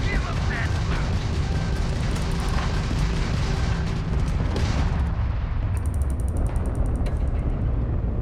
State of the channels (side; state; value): both; identical; correlation 1.00